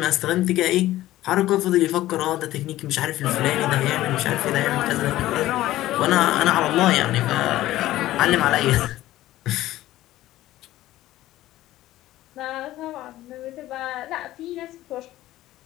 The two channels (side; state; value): right; quieter; 15.3 dB